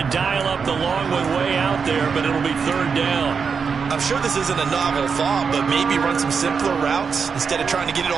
dial up the long one way out there, but it'll be 3rd down. I'm sure this isn't a novel thought, but maybe run some simpler routes instead of trying to get it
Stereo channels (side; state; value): left; quieter; 5.8 dB